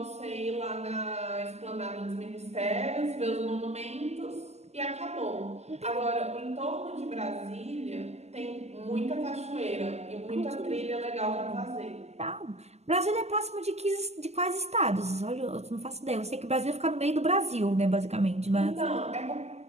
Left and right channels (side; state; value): left; late; 0.32 ms